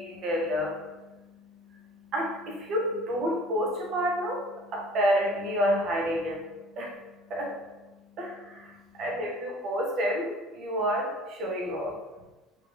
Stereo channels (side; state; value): both; normal; correlation 0.47